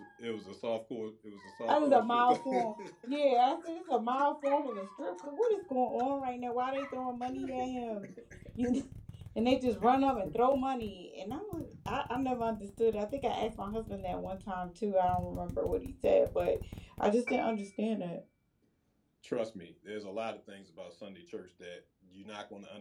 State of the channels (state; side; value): identical; both; correlation 1.00